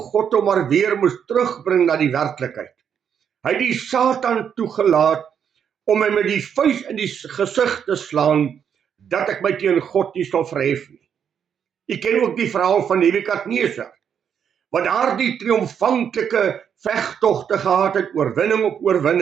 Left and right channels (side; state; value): left; quieter; 8.0 dB